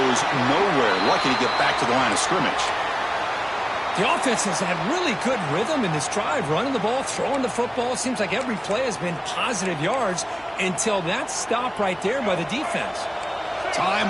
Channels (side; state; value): both; identical; correlation 1.00